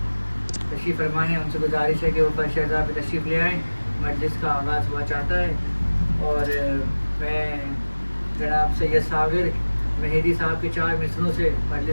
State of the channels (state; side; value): inverted; both; correlation -1.00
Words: تشریف فرما ہیں ان سے گزارش ہے کہ وہ فرش اعضاء پہ تشریف لے آئیں، مجلس کا آغاز ہوا چاہتا ہے۔ اور میں جناب سید صابر مہدی صاحب کے 4 مصروں سے